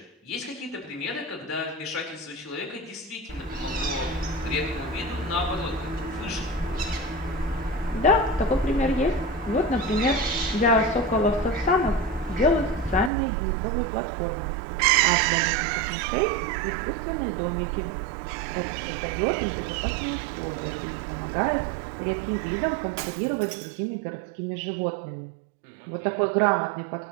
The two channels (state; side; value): drops out; left; at 13.1 s